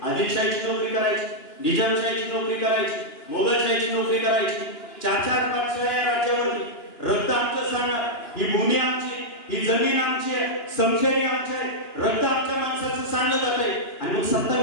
आदिलशाहीची नोकरी करायची, निजामशाहीची नोकरी करायची, मोगलशाहीची नोकरी करायची. 4-4 बादशाह या राज्यावरती. रक्त आमचं सांगणार, ही भूमी आमची, ही जमीन आमची आहे, समशेरी आमची आहे, रक्त आमच्या माणसाचं सांगलं जातंय. आणि मग सत्ता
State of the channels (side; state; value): right; late; 2.9 ms